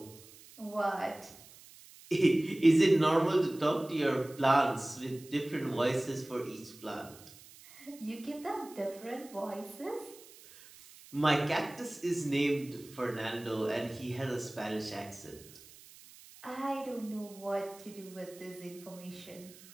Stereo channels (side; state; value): right; noise; hiss, 21 dB below the sound